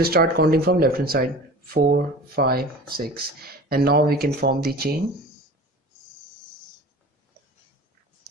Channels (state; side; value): normal; both; correlation 0.38